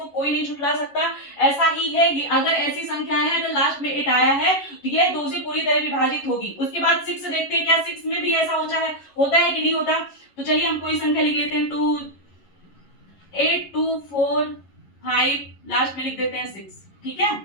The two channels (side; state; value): right; late; 11 ms